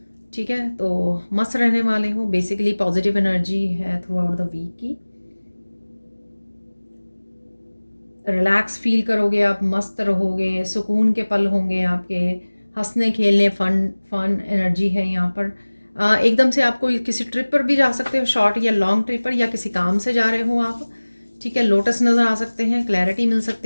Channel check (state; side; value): inverted; both; correlation -1.00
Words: ठीक है। तो मस्त रहने वाले हो, बेसिकली पॉजिटिव एनर्जी है थ्रू आउट द वीक की। रिलैक्स फील करोगे आप, मस्त रहोगे, सुकून के पल होंगे आपके, हंसने खेलने, फन फन एनर्जी है यहाँ पर। एकदम से आपको किसी ट्रिप पर भी जा सकते हो, शॉर्ट या लॉन्ग ट्रिप पर, या किसी काम से जा रहे हो आप, ठीक है। लोटस नज़र आ सकते हैं, क्लैरिटी मिल